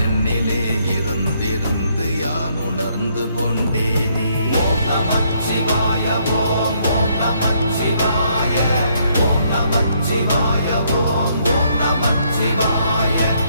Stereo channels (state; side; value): inverted; both; correlation -0.70